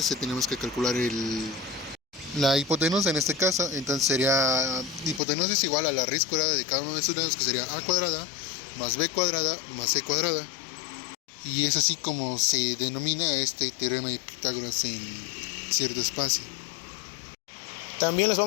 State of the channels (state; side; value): drops out; right; at 5.2 s